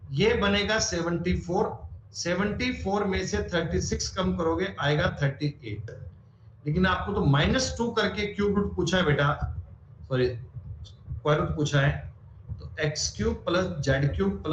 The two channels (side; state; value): both; identical; correlation 1.00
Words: ये बनेगा 74, 74 में से 36 कम करोगे आएगा 38। लेकिन आपको तो -2 करके क्यूब रूट पूछा है बेटा, सॉरी स्क्वायर रूट पूछा है, तो x cube plus Z cube